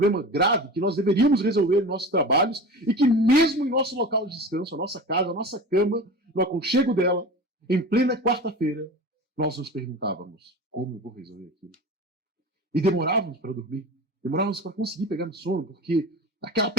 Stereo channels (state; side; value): normal; both; correlation 0.33